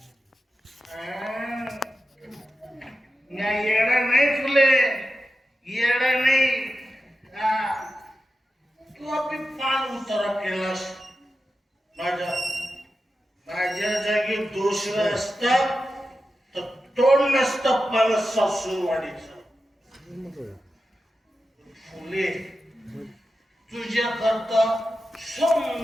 येडा नाही फुले, येडा नाही. तू आपली पान उतारा केलास. माझ्या जागी दुसरा असता तर तोंड नसतं पान सासूरवाडीचं. फुले तुझ्या करता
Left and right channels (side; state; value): both; normal; correlation 0.91